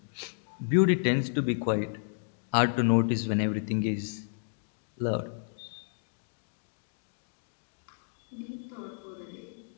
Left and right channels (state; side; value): silent; right; digital silence